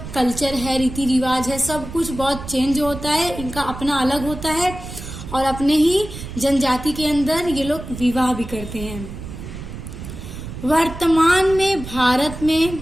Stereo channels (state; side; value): noise; right; rumble, 11 dB below the sound